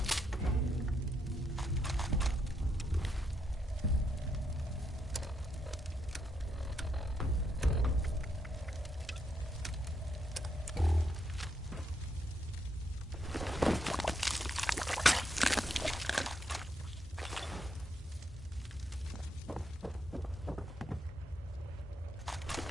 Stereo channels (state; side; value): normal; both; correlation 0.78